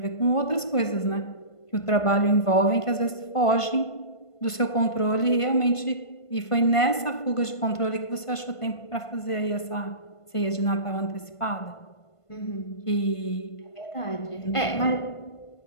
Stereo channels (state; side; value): late; right; 1.5 ms